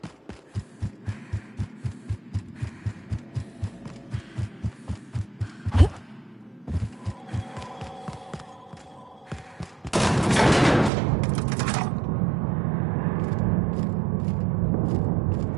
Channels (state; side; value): drops out; left; at 10.9 s